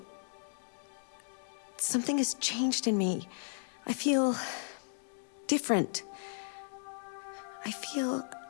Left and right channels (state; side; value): silent; right; digital silence